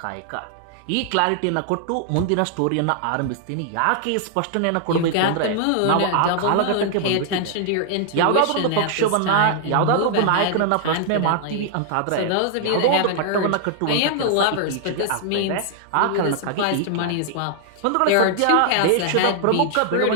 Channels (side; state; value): both; different; correlation -0.01